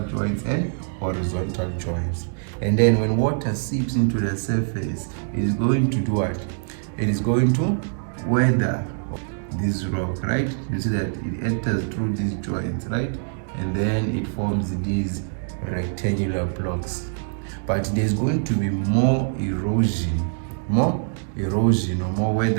joints and horizontal joints. And then when water seeps into the surface, it is going to do what? It is going to weather this rock, right? You see that it enters through these joints, right? And then it forms these rectangular blocks. But there's going to be more erosion or more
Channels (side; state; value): left; silent; digital silence